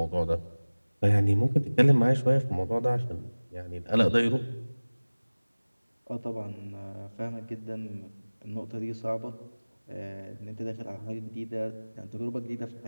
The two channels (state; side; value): inverted; both; correlation -1.00